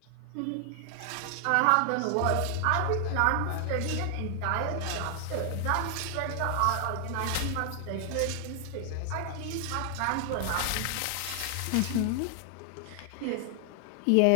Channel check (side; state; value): both; different; correlation 0.00